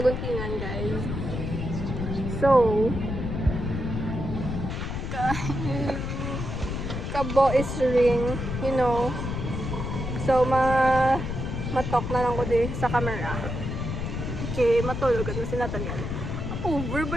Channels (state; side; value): noise; left; rumble, 4 dB below the sound